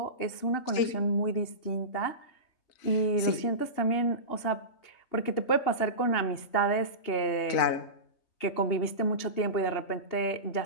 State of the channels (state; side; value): late; right; 2.8 ms